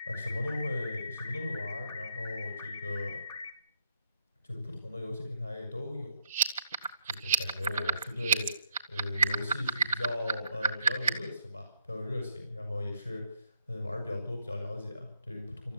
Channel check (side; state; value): both; inverted; correlation -0.75